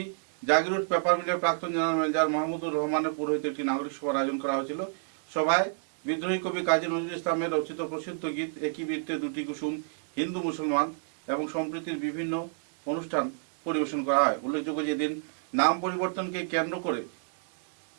জাগিরুট পেপার মিলের প্রাক্তন জেনারেল ম্যানেজার মাহমুদুর রহমানের পৌরোহিত্যে একটি নাগরিক সভার আয়োজন করা হয়েছিল। সভায় বিদ্রোহী কবি কাজী নজরুল ইসলামের রচিত প্রসিদ্ধ গীত একই বৃত্তে দুটি কুসুম, হিন্দু মুসলমান এবং সম্প্রীতির বিভিন্ন অনুষ্ঠান পরিবেশন করা হয়। উল্লেখযোগ্য যে দিন নাম পরিবর্তনকে কেন্দ্র করে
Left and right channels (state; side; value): silent; left; digital silence